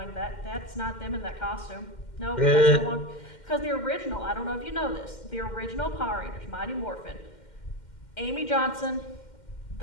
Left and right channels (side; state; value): right; late; 2.1 ms